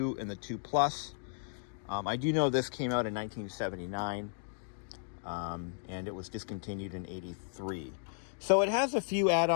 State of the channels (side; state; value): right; silent; digital silence